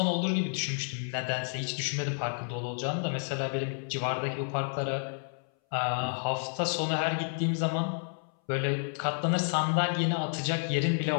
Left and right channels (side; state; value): right; silent; 57 dB below the other